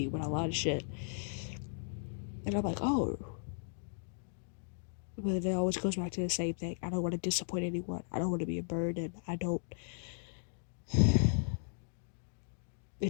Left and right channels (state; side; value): silent; right; digital silence